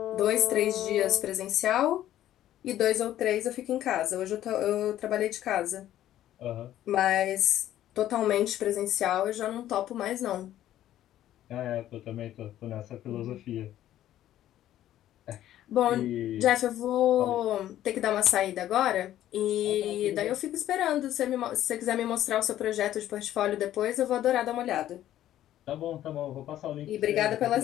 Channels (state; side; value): quieter; right; 12.6 dB